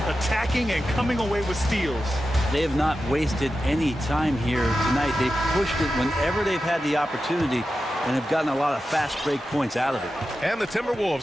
attacking and coming away with steals. They have not wasted any time here tonight. They've pushed it whenever they've had the opportunity and have gotten a lot of fast break points out of it. And the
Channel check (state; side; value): normal; both; correlation 0.91